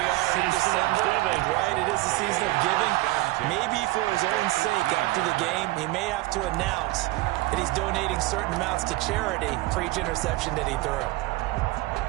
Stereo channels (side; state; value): left; quieter; 19.4 dB